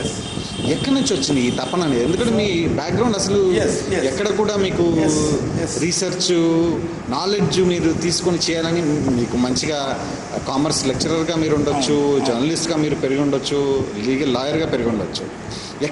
ఎక్కడి నుంచి వచ్చింది ఈ తపన అనేది? ఎందుకంటే మీ బ్యాక్గ్రౌండ్ అసలు ఎక్కడ కూడా మీకు రీసెర్చ్ నాలెడ్జ్ మీరు తీసుకొని చేయాలని, మీకు మంచిగా కామర్స్ లెక్చరర్గా మీరు ఉండొచ్చు, జర్నలిస్ట్గా మీరు పెరిగి ఉండొచ్చు, లీగల్ లాయర్గా పెరిగి ఉండొచ్చు.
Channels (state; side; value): identical; both; correlation 1.00